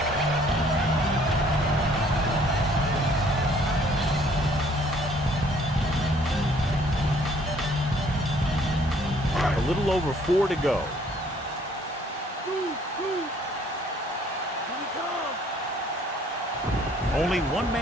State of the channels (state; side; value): normal; both; correlation 0.60